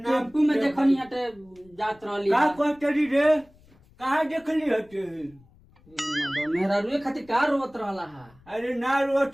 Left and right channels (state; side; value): noise; left; rumble, 28 dB below the sound